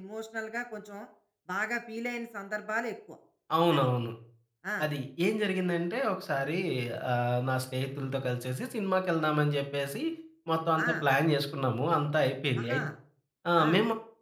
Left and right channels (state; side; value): identical; both; correlation 1.00